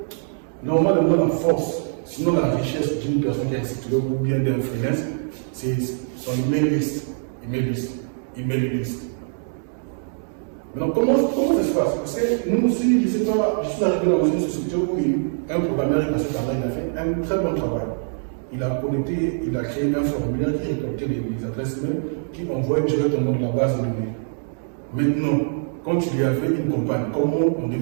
normalement, la force, sinon la richesse d'une personne qui a un site web ou bien d'un freelance, c'est son email list. Maintenant, comment ça se passe? Parce que nous aussi, je ne sais pas, je suis arrivé dans une société où un programmeur est passé par là, il a fait un très bon travail. Il a connecté, il a créé un formulaire qui récoltait les adresses mail, qui envoyait directement dans la base de données. Maintenant, quand il y avait une campagne, comment on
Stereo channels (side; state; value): left; silent; digital silence